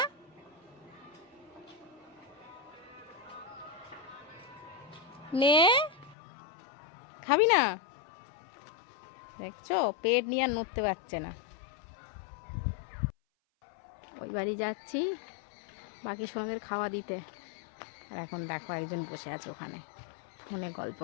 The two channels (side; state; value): right; drops out; at 6.2 s